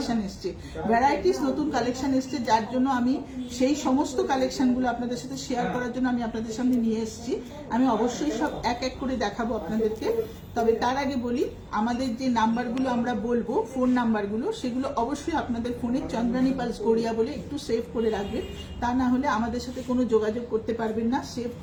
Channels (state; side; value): identical; both; correlation 1.00